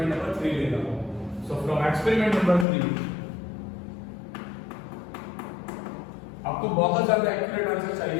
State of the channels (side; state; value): right; drops out; at 2.7 s